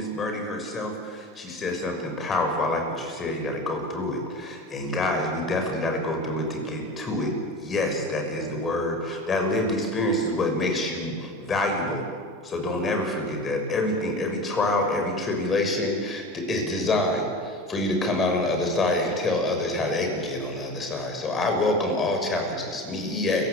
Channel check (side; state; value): both; normal; correlation 0.31